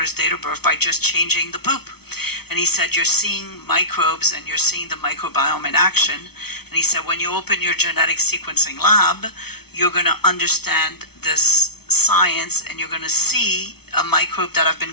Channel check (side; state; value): right; late; 0.97 ms